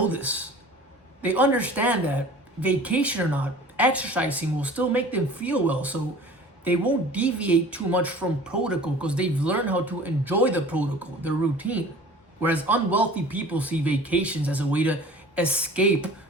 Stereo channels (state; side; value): normal; both; correlation 0.44